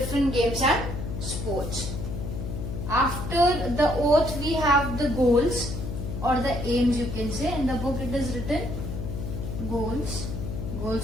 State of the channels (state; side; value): noise; left; hum, 5 dB below the sound